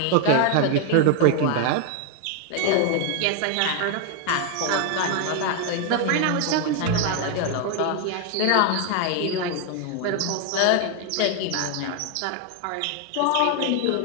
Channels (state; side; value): different; both; correlation 0.00